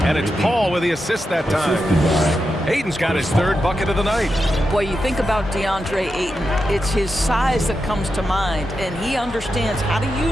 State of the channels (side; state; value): both; normal; correlation 0.88